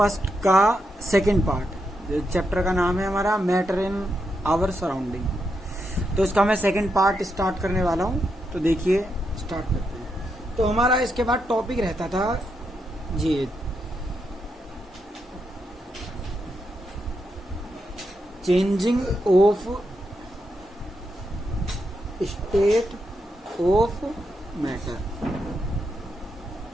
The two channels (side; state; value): both; normal; correlation 0.83